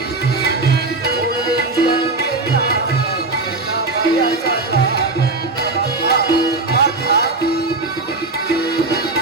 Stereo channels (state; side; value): quieter; left; 3.3 dB